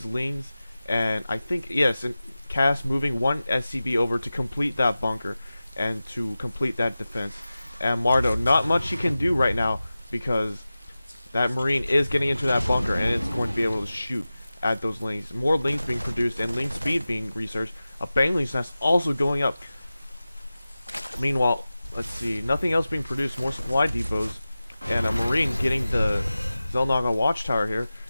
Lings. And I think, yes, and Cass moving one SCV over to complete that bunker and to complete that defense. And Mardow, not much he can do right now because that Marine is getting into that bunker, and it's going to be able to shoot at those Lings. More Lings being produced and Ling speed being researched. A Bangling's nest also going up. Meanwhile, let's see, nothing else being produced. More supply depots, and a Marine getting the xel'naga watchtower here.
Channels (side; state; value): both; inverted; correlation -0.96